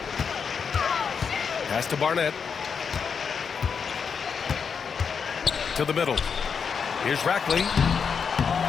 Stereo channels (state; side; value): quieter; right; 6.3 dB